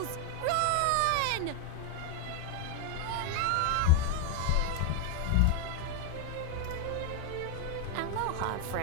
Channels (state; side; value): different; both; correlation 0.01